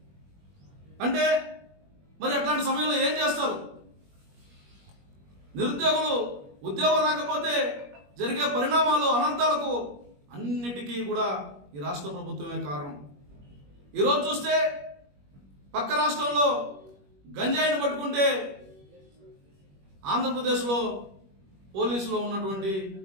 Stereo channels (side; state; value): left; late; 21 ms